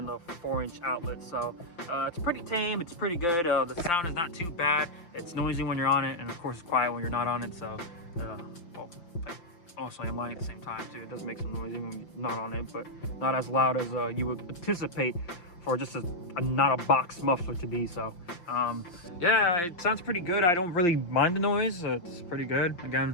the 4-inch outlet. So it's pretty tame, it's pretty good. The sound is not too bad. It's noisy when you're on it, and of course it's quiet when you're not on it. So well, also I'm lying at the same time too. It does make some noise when you're not on it, but not as loud as you would anticipate for just not a box muffler to be. So yeah, it sounds pretty good. I don't really mind the noise. It's pretty good. Again,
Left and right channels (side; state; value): right; late; 5.8 ms